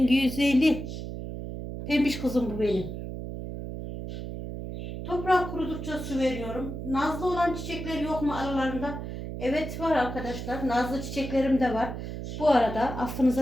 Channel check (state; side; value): noise; right; hum, 7 dB below the sound